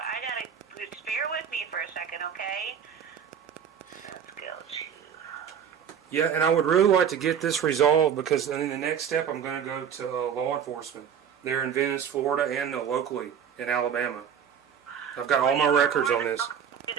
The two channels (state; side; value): quieter; left; 7.9 dB